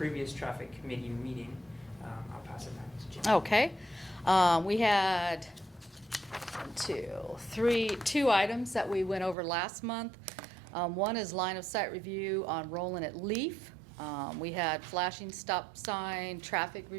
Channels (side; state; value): left; drops out; at 9.3 s